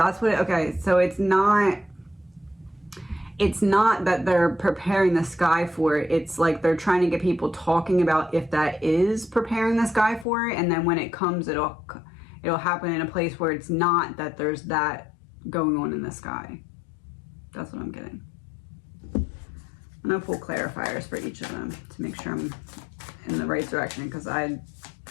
what, okay, so it's not that they're preparing the sky for it. It's like they're trying to get people talking about if that is preparing the sky for it. And then when it comes, it'll happen in a place where it's not that there's that going on in the sky. That's what I'm getting. I'm going to pull clarifiers for each of them to make sure I'm in the right direction, because I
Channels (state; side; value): drops out; right; at 10.2 s